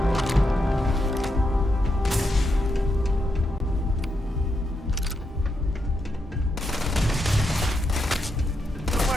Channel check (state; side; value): normal; both; correlation 0.83